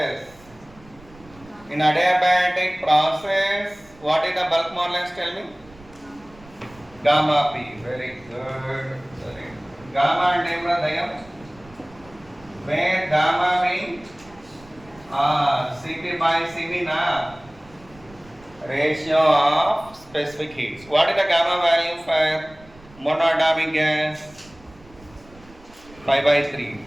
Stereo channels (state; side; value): noise; right; rumble, 24 dB below the sound